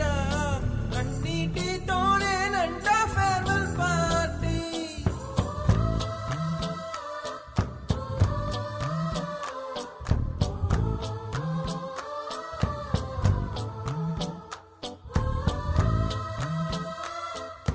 కన్నీటితోనేనంట ఫేర్వెల్ పార్టీ.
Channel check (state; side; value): identical; both; correlation 1.00